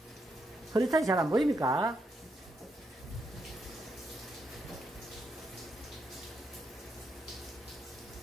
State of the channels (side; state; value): both; normal; correlation 0.80